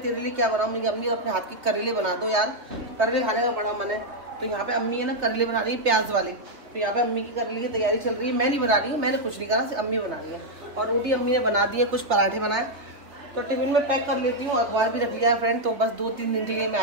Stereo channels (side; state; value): left; late; 3.4 ms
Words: लिए क्या बनाऊँ। मेरी अम्मी अपने हाथ की करेले बना दो यार, करेले खाने का बड़ा मन है। तो यहाँ पे अम्मी है ना करेले बना रही है प्याज वाले। तो यहाँ पे अम्मी की करेले की तैयारी चल रही है। मैं नहीं बना रही हूँ, मैंने कुछ नहीं करा, अम्मी बना रही है। और रोटी अम्मी ने बना दी है, कुछ पराठे बनाए। तो टिफिन में पैक कर लेती हूँ। अखबार भी रख लिया है फ्रेंड। तो बस 2-3 दिन के लिए मैं